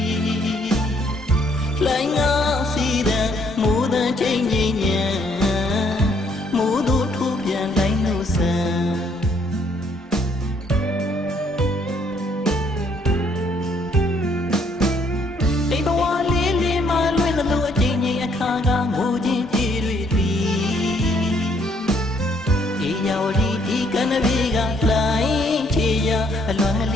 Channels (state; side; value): normal; both; correlation 0.68